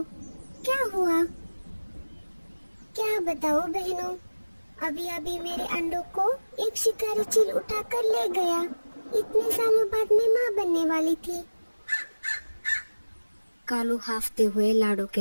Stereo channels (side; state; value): both; inverted; correlation -1.00